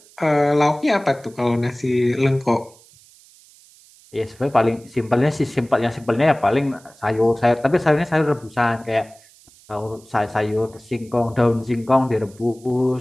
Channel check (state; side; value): noise; right; hiss, 27 dB below the sound